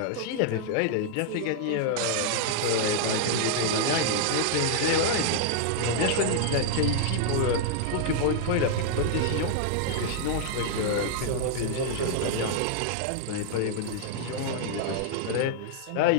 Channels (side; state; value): both; different; correlation 0.00